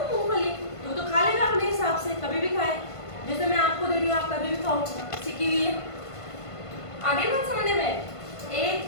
मूंगफली, तो खा लेगा अपने हिसाब से, कभी भी खाए। जैसे मैं आपको दे रही हूँ, आप कभी भी खाओ, सीखी हुई है। आगे बात समझने में। एक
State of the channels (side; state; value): right; late; 1.5 ms